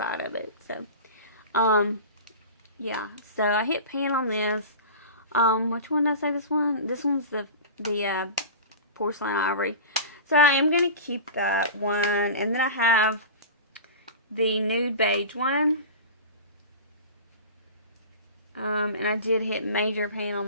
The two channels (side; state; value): both; inverted; correlation -0.32